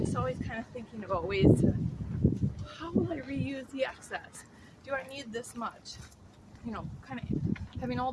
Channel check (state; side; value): identical; both; correlation 1.00